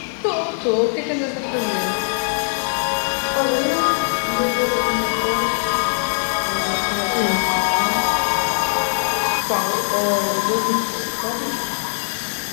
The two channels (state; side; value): silent; right; digital silence